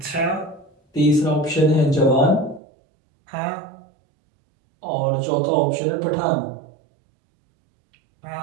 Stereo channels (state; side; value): drops out; left; at 2.6 s